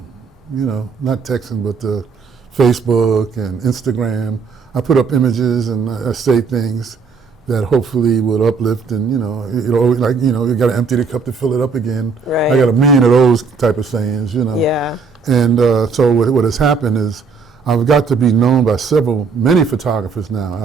you know, not texting, but the Facebook and Instagram. I put up images and I say things that hopefully will uplift, and you know, like, you know, you got to empty the cup to fill it up again. Right. I got a million of those type of sayings, you know. Yeah. And so what has happened is I've got to be known by many photographers now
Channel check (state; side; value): quieter; left; 5.1 dB